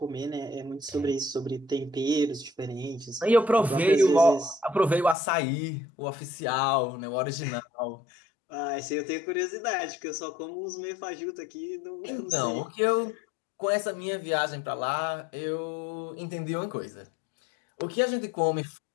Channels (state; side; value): drops out; right; at 5.2 s